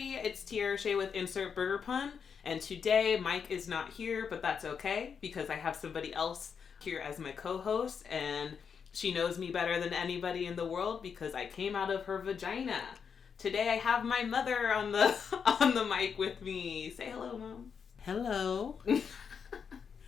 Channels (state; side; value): quieter; right; 6.6 dB